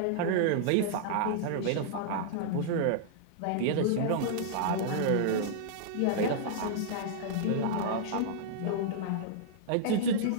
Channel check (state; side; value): different; both; correlation -0.01